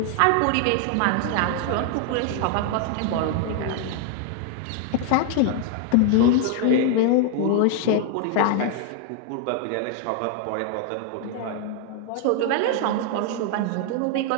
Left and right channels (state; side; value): different; both; correlation 0.00